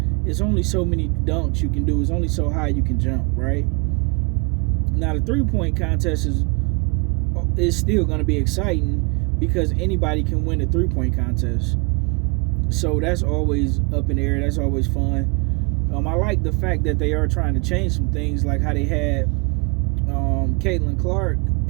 it's only so many dunks you can do. It's only so high you can jump, right? Now, the three-point contest is still going to be exciting because anybody can win a three-point contest. So that's always up in the air. That's always fun. I like the fact that they are trying to change some things, like how they had Caitlin Clark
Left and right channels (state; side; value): quieter; left; 32.0 dB